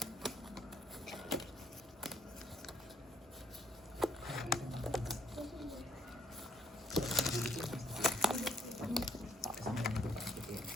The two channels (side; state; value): both; normal; correlation 0.67